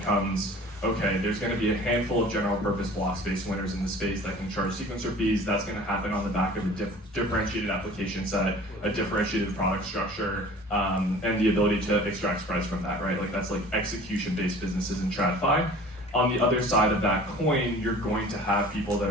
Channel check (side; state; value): both; normal; correlation 0.45